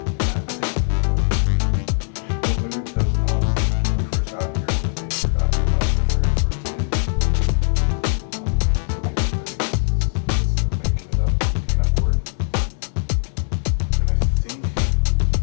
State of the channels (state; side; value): silent; right; digital silence